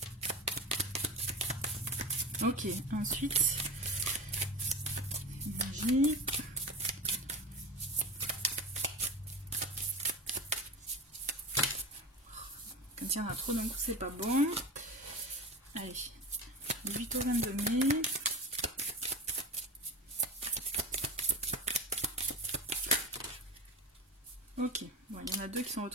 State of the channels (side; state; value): both; normal; correlation 0.27